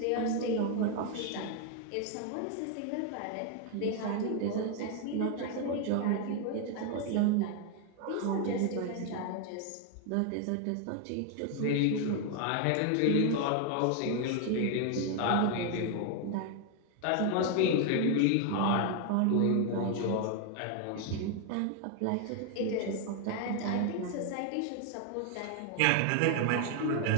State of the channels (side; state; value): both; different; correlation 0.01